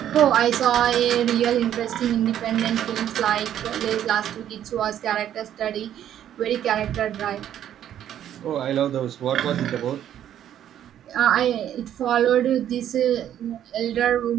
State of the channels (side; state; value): left; quieter; 10.7 dB